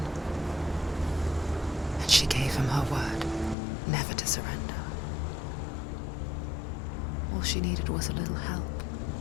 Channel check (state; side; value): drops out; right; at 3.6 s